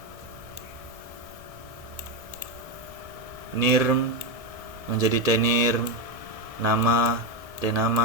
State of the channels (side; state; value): left; late; 1.7 ms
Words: Nirm menjadi tnirm, nama,